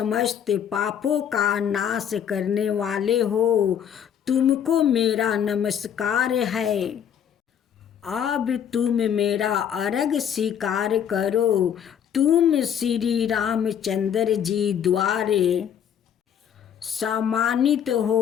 पापों का नाश करने वाले हो। तुमको मेरा नमस्कार है। अब तुम मेरा अर्घ स्वीकार करो। तुम श्री रामचंद्र जी द्वारा सम्मानित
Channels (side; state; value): right; quieter; 8.9 dB